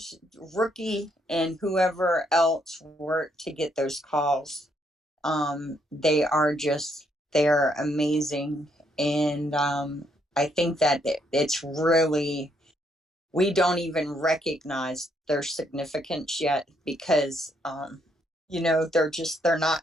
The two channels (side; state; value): both; normal; correlation 0.73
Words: Rookie and whoever else worked to get those calls, they're amazing. And I think that it's really, we don't even recognize their significance yet because they're